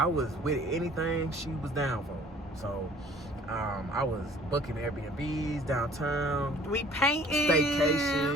was with anything she was down for. So I was booking Airbnbs downtown. We painting.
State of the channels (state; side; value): normal; both; correlation 0.53